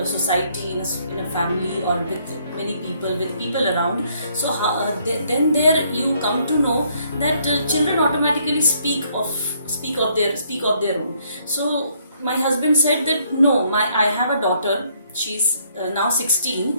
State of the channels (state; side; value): inverted; both; correlation -0.68